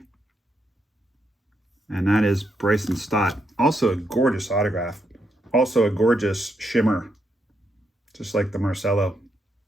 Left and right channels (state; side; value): normal; both; correlation 0.80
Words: And that is Bryson Stott. Also a gorgeous autograph. Also a gorgeous shimmer. Just like the Marcelo.